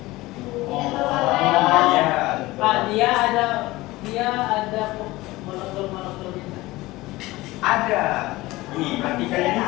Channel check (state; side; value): quieter; right; 19.4 dB